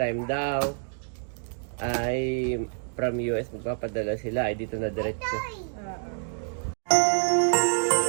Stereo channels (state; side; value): silent; left; 60 dB below the other